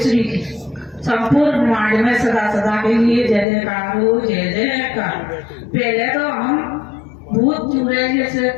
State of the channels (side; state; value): right; drops out; at 3.5 s